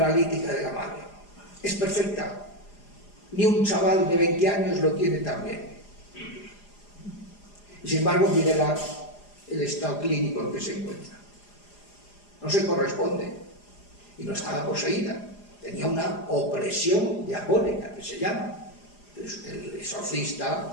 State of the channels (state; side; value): late; right; 4.9 ms